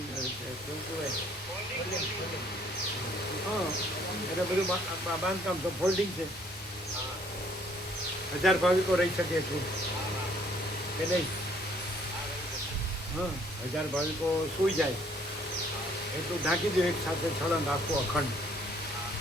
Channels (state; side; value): normal; both; correlation 0.62